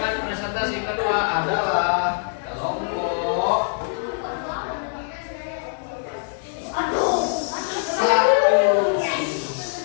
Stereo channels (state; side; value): silent; right; 63 dB below the other